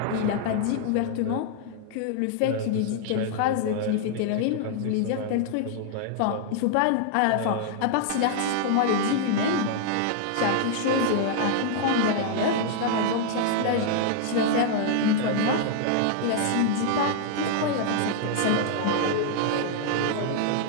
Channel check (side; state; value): both; different; correlation 0.00